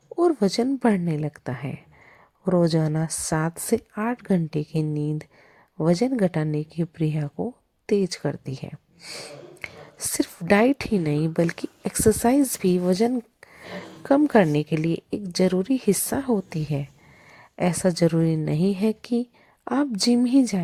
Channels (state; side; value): identical; both; correlation 1.00